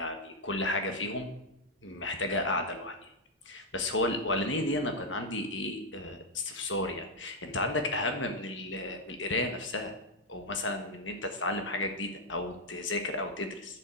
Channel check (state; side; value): normal; both; correlation -0.01